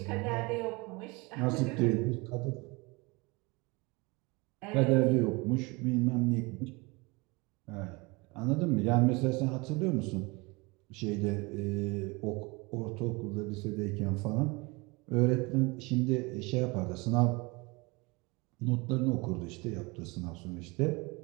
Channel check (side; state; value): left; quieter; 26.2 dB